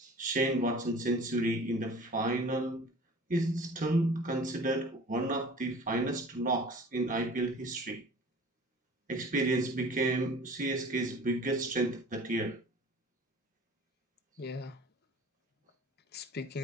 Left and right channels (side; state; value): both; normal; correlation 0.44